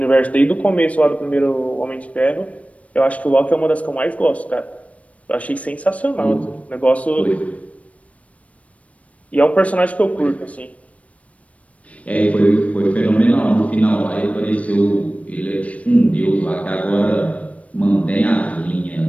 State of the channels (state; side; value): late; right; 0.065 ms